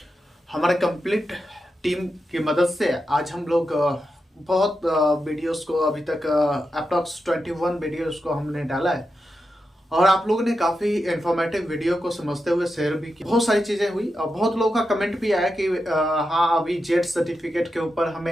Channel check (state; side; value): normal; both; correlation 0.88